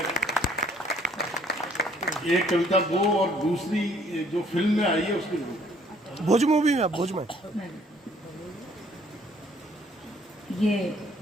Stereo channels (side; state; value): both; normal; correlation 0.61